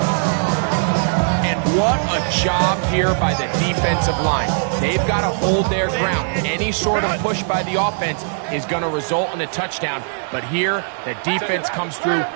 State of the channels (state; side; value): silent; left; 66 dB below the other